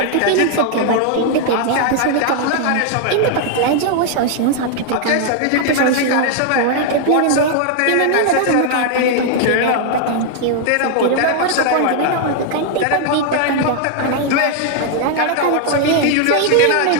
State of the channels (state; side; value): different; both; correlation 0.00